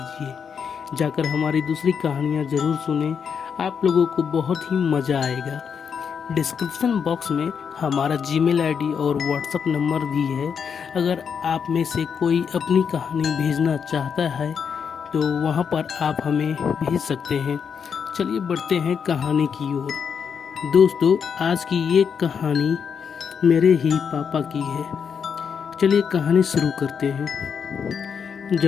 जाकर हमारी दूसरी कहानियाँ ज़रूर सुनें, आप लोगों को बहुत ही मज़ा आएगा। डिस्क्रिप्शन बॉक्स में हमारा जीमेल आईडी और व्हाट्सएप नंबर भी है। अगर आप में से कोई अपनी कहानी भेजना चाहता है तो वहाँ पर आप हमें भेज सकते हैं। चलिए बढ़ते हैं कहानी की ओर। दोस्तों, आज की ये कहानी मेरे ही पापा की है। चलिए कहानी शुरू करते हैं।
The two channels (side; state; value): right; quieter; 6.8 dB